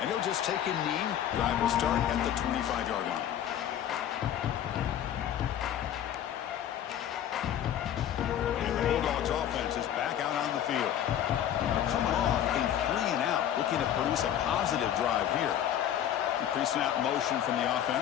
And he'll just take a knee. Drive will start at the 25-yard line. And the Bulldogs offense is back out on the field. They're coming off a 3-and-out, looking to produce a positive drive here. Increasing out motion from the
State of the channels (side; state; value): right; quieter; 10.5 dB